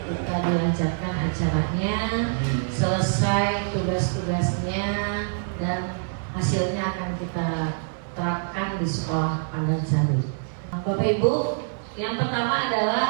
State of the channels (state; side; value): silent; left; 58 dB below the other